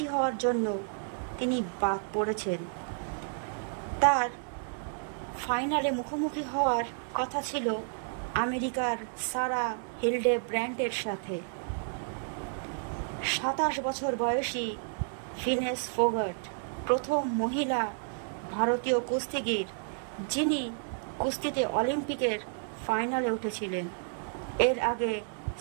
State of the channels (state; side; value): silent; left; 57 dB below the other